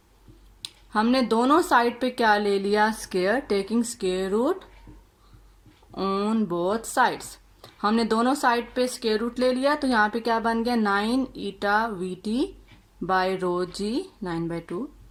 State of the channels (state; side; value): identical; both; correlation 1.00